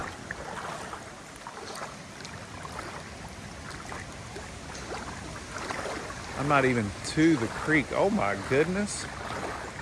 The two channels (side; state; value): both; identical; correlation 1.00